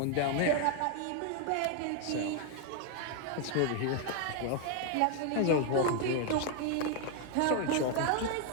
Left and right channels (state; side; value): different; both; correlation 0.00